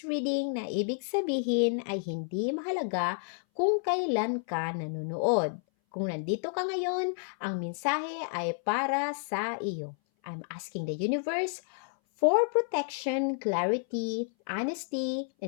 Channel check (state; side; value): silent; right; 58 dB below the other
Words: reading na ibig sabihin ay hindi mahalaga kung kailan ka nanonood. Kung nandito ka ngayon, ang mensahe ay para sa iyo. I'm asking the universe for protection, clarity, honesty,